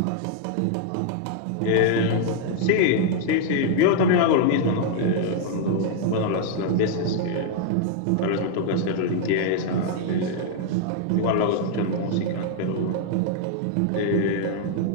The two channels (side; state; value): both; different; correlation 0.00